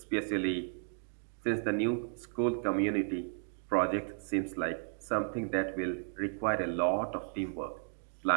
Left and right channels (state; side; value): silent; left; 55 dB below the other